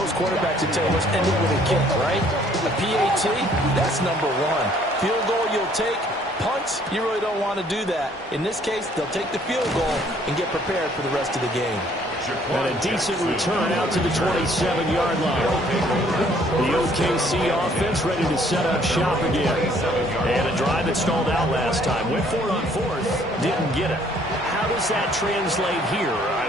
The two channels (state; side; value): normal; both; correlation 0.61